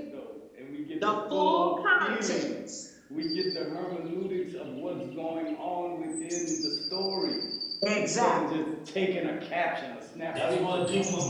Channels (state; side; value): identical; both; correlation 1.00